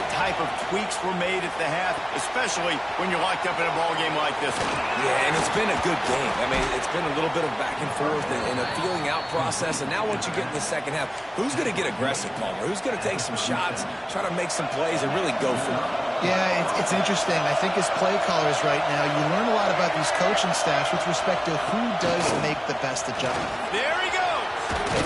type of tweaks were made at the half, especially when you're locked up in a ball game like this one. Yeah, and it's been a good game. I mean, it's been a little bit of back and forth and a feeling out process. And now once you get in the second half, who's going to get aggressive, Palmer? Who's going to take some shots, try to make some plays, and really go for it? Yeah, it's interesting. I think as play callers right now, you learn a lot about these coaching staffs with respect to who does make the best adjustment. There he goes!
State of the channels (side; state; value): both; identical; correlation 1.00